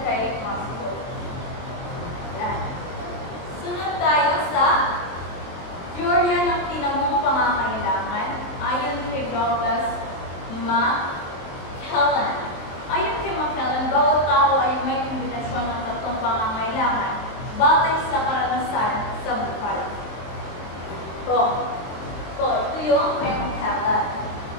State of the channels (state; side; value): late; right; 23 ms